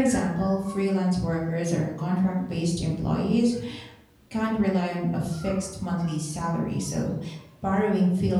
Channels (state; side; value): identical; both; correlation 1.00